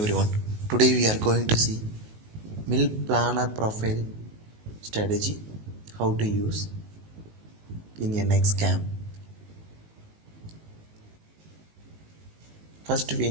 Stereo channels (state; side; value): late; left; 19 ms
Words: Today we are going to see mill planner profile strategy, how to use in NX cam. First we